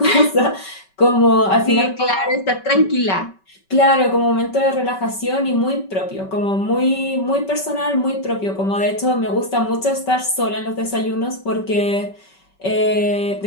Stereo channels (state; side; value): late; right; 5.2 ms